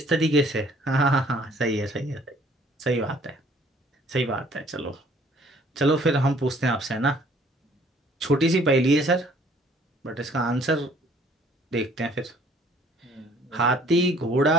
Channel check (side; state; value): both; normal; correlation 0.57